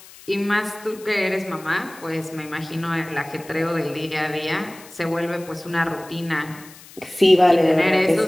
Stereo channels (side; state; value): left; noise; hiss, 20 dB below the sound